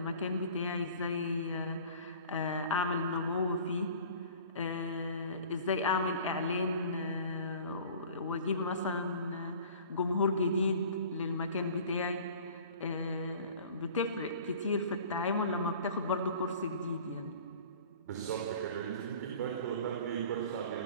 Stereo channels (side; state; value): both; inverted; correlation -0.46